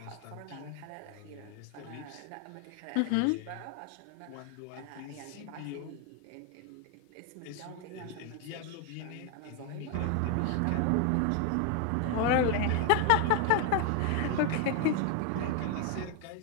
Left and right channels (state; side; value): different; both; correlation 0.01